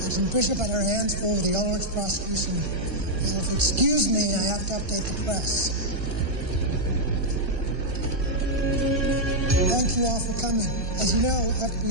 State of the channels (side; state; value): left; late; 1.7 ms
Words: Agent Bishop had her hands full with the Ulrich prosecution. So if you excuse me, I have to update the press. Thank you all for coming. As you know,